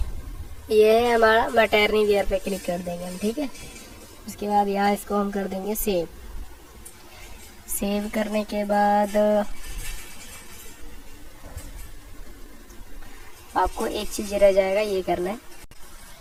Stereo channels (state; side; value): identical; both; correlation 1.00